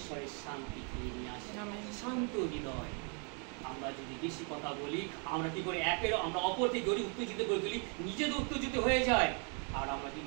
শান্তি নিয়ে আসে, শান্ত হৃদয়। আমরা যদি বেশি কথা বলি আমরা কি করি, আমরা অপরকে গড়ি উত্তেজিত করে তুলি, নিজেদের উত্তেজিত হয়ে যায়, আর আমরা কি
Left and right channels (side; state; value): left; quieter; 37.6 dB